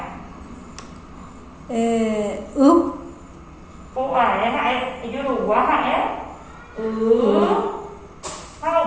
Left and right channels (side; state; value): both; identical; correlation 1.00